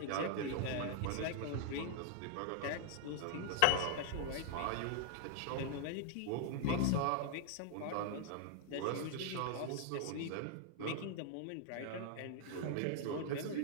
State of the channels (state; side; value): different; both; correlation -0.01